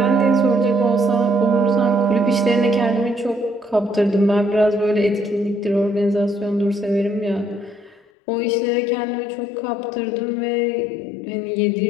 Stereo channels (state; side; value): drops out; right; at 8.1 s